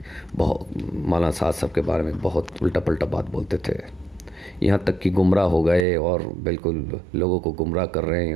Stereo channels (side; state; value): left; drops out; at 5.9 s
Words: بہت مولانا سعد صاحب کے بارے میں بہت الٹا پلٹا بات بولتے تھے، یہاں تک کہ گمراہ ہو گئے اور بالکل لوگوں کو گمراہ کر رہے ہیں،